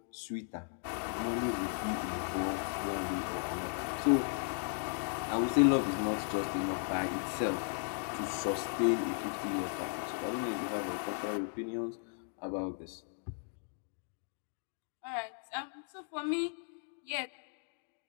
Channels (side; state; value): right; silent; 54 dB below the other